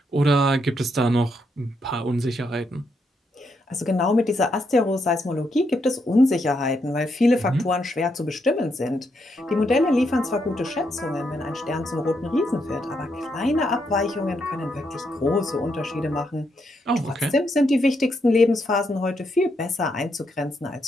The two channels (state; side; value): normal; both; correlation 0.79